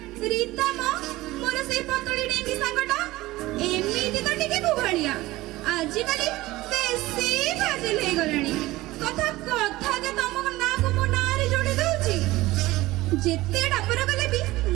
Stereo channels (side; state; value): left; quieter; 18.4 dB